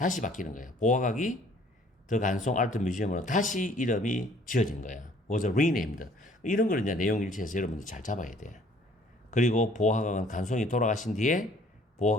바뀌는 거예요. 보화각이 더 간송 아트 뮤지엄으로 다시 이름이 지어진 거야. was renamed. 이런 걸 이제 내용 일치해서 여러분들 잘 잡아야 돼. 그리고 보화각은 간송이 돌아가신 뒤에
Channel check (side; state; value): both; normal; correlation 0.57